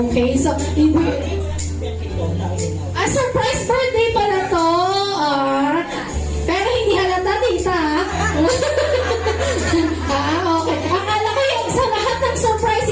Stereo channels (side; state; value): both; identical; correlation 1.00